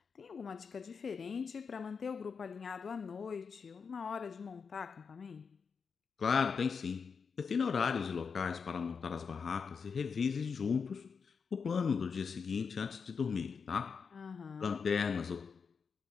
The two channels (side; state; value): right; quieter; 5.7 dB